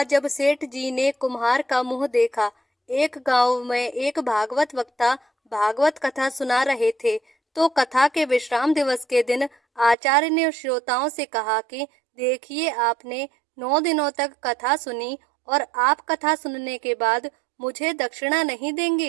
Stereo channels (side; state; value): left; drops out; at 10.0 s